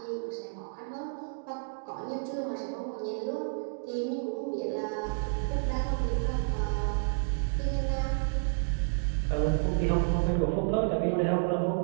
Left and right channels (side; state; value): left; silent; digital silence